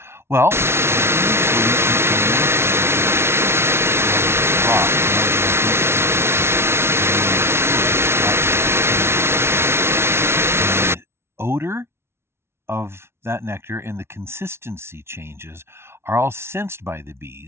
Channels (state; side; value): late; left; 0.12 ms